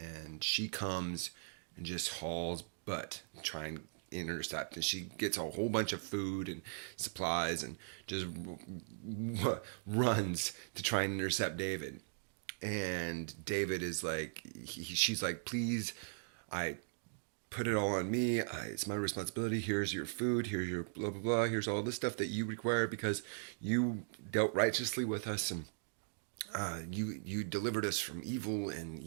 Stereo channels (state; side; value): silent; left; digital silence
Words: she comes and just hauls butt, trying to intercept, and she gets a whole bunch of food and supplies and just runs to try and intercept David. And David is like, she's like, please, I put it all on me. It's my responsibility. Here's your food. Here's your blah, blah, blah. Here's all the stuff that you require because you dealt righteously with us, and you delivered us from evil, and